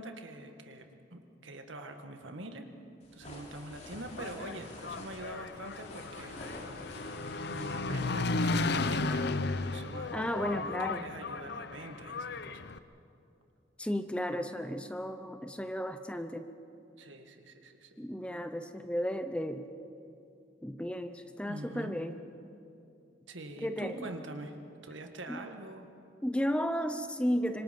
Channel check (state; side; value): normal; both; correlation 0.64